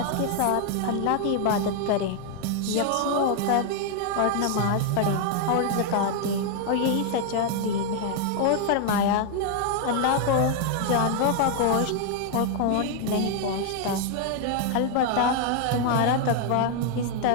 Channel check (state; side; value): different; both; correlation 0.00